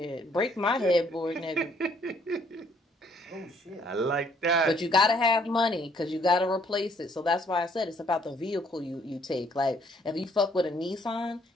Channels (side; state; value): both; normal; correlation 0.65